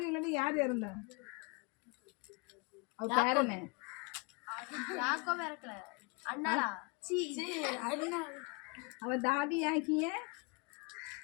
யார் இறந்தா? அவ பேரனே அவ தாதி ஆகிய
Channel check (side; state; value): right; quieter; 30.6 dB